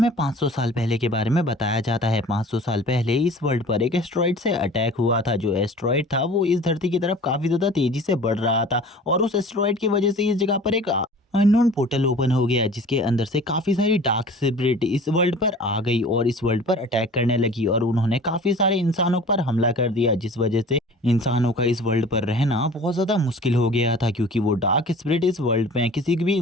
500 साल पहले के बारे में बताया जाता है। 500 साल पहले इस वर्ल्ड पर एक एस्ट्रॉइड से अटैक हुआ था। जो एस्ट्रॉइड था वो इस धरती की तरफ काफी ज्यादा तेजी से बढ़ रहा था और उस एस्ट्रॉइड की वजह से इस जगह पर एक अननोन पोर्टल ओपन हो गया, जिसके अंदर से काफी सारी डार्क स्पिरिट इस वर्ल्ड पर आ गई और इस वर्ल्ड पर अटैक करने लगी और उन्होंने काफी सारे इंसानों पर हमला कर दिया, जिस वजह से इंसानों का इस वर्ल्ड पर रहना बहुत ज्यादा मुश्किल हो गया था, क्योंकि वो डार्क स्पिरिट इस वर्ल्ड में किसी भी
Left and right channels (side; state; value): both; normal; correlation 0.43